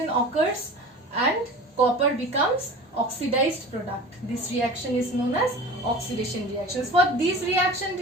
occurs and copper becomes oxidized product. This reaction is known as oxidation reactions. For this reaction, it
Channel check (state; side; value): normal; both; correlation 0.37